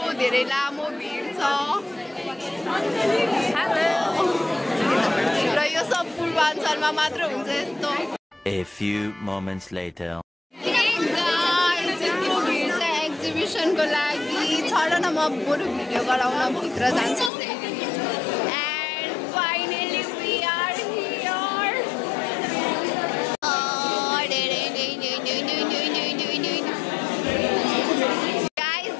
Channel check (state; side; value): drops out; right; at 17.3 s